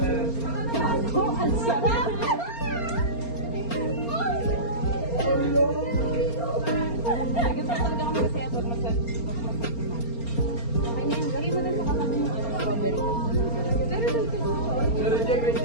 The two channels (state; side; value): late; right; 4.3 ms